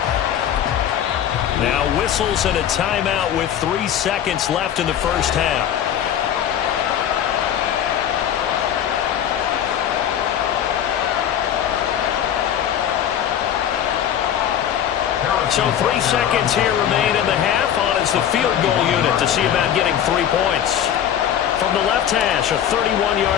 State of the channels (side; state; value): right; quieter; 9.9 dB